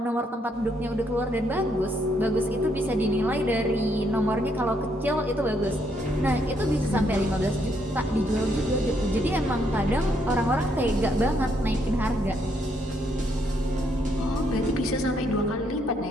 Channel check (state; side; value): normal; both; correlation 0.73